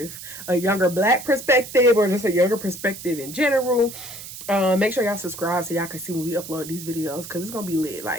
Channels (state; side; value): noise; right; hiss, 12 dB below the sound